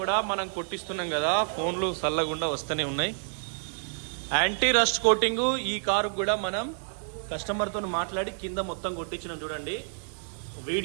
కూడా మనం కొట్టిస్తున్నాం కదా. ఫోన్లు చల్లకుండా వస్తూనే ఉన్నాయి. యాంటీ రస్ట్ కోటింగ్ ఈ కారు కూడా మనం కస్టమర్తో మాట్లాడి కింద మొత్తం కొట్టించినాం. చూడండి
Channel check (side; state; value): left; silent; digital silence